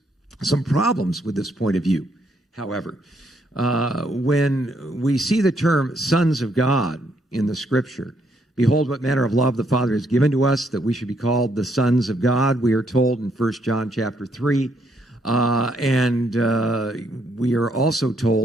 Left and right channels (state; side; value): normal; both; correlation 0.73